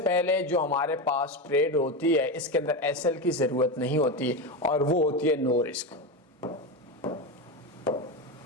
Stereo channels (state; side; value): normal; both; correlation 0.17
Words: जो हमारे पास ट्रेड होती है, इसके अंदर एसएल की जरूरत नहीं होती, और वो होती है नो रिस्क।